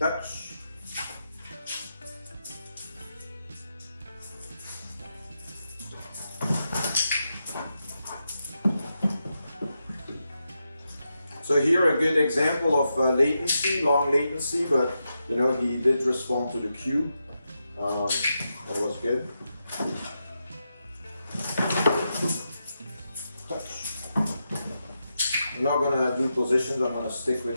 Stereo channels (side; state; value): both; inverted; correlation -0.87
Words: So here a good example of latency, long latency, but you know he did respond to the cue. That was good. Touch. I'm not gonna do positions. I'm gonna stick with